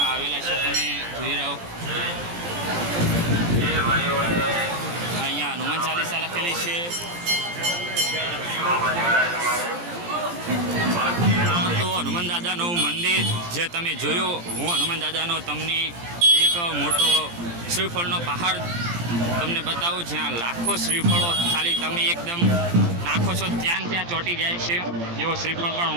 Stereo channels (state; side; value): late; left; 17 ms